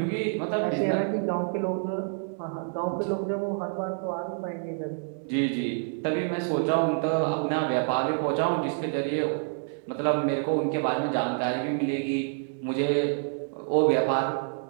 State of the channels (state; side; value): silent; left; 60 dB below the other